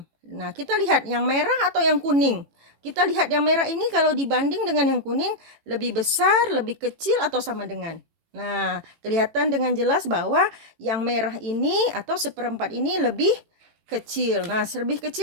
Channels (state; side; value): late; left; 18 ms